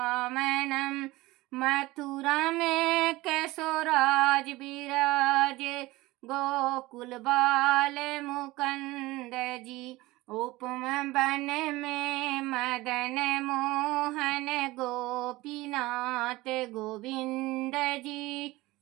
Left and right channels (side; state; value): left; quieter; 19.8 dB